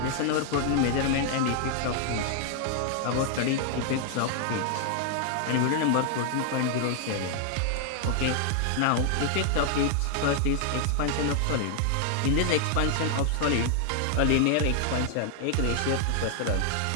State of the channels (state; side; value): different; both; correlation 0.00